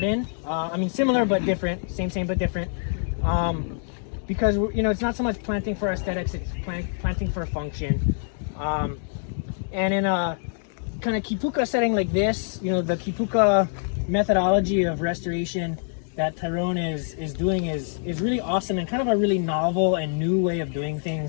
I mean, similar but different, same but different. Because, you know, it's not so much planting for aesthetics, it's planting for function. And in a kind of kīpuka setting like this, you know, the kīpuka methodology of restoration that Tyrone is doing is really awesome and kind of a really novel and new way of doing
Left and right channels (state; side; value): silent; right; digital silence